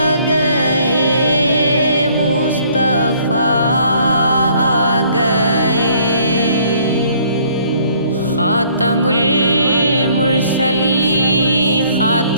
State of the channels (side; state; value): both; inverted; correlation -0.61